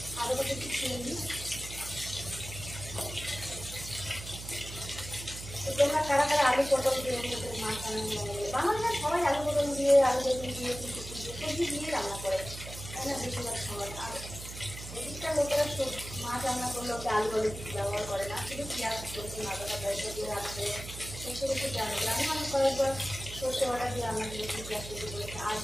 আদাটা একটু ছিঁড়ে নিই। তোমরা কারা কারা আলু পটল দিয়ে মাছ রান্না করে? বাঙালিরা সবাই আলু পটল দিয়ে, আলু বেগুন দিয়ে, সবজি দিয়ে রান্না করে, তাই না? বেশিরভাগ সময়। আর এদিকটা লোকেরা মাছ রান্না করলে ওকে আলু বলে ব্যবহার করে না, শুধু পেঁয়াজ সরষে আদাটা পয়সা দিয়ে রাখবে, সেসব একটু জানে। আমি মনে কয়েকবার সরষে বাটা দিয়ে রান্না করেছি, পেঁয়াজ তৈরি করেছি। আর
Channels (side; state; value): right; noise; hum, 11 dB below the sound